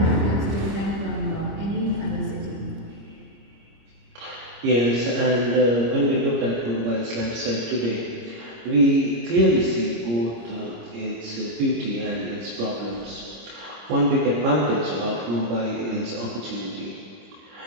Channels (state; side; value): late; left; 26 ms